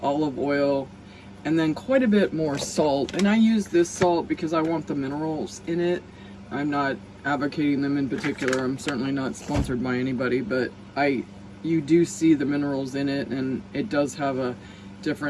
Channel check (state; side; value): identical; both; correlation 1.00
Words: olive oil, and then quite a bit more salt. And I use this salt because I want the minerals in it. I'm not advocating them in particular. I'm certainly not sponsored by anybody, but you do see the minerals in it, and it does have a